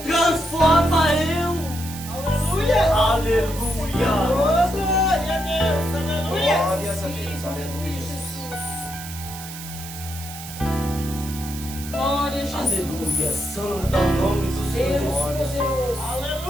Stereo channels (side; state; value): right; noise; hiss, 12 dB below the sound